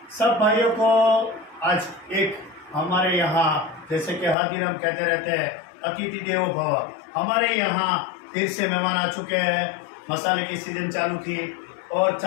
सब भाइयों को। आज एक हमारे यहाँ जैसे कि हर दिन हम कहते रहते हैं अतिथि देवो भव, हमारे यहाँ फिर से मेहमान आ चुके हैं। मसाले की सीजन चालू थी और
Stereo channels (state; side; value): drops out; right; at 4.4 s